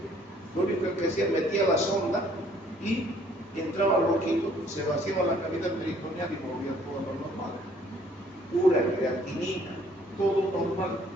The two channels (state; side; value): normal; both; correlation 0.61